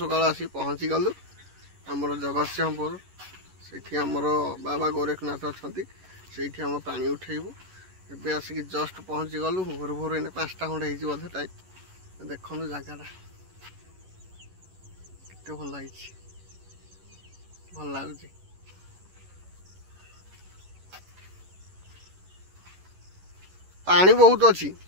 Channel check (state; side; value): late; left; 11 ms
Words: आसी पहुँची गलु आमर जगतसिंहपुर से आमर बाबा गोरखनाथ अच्छा से आम पानी उठेबू एबे आसिक जस्ट पहुँची गलु भोर भोर एने 5टा खंडे बोधे टाइम देखु जगह के भल लगी भल लगुच पानी बहुत अच्छी